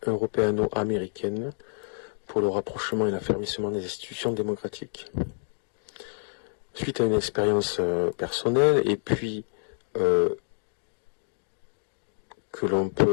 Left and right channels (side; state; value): right; silent; 57 dB below the other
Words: européano-américaine pour le rapprochement et l'affermissement des institutions démocratiques. Suite à une expérience personnelle et puis que l'on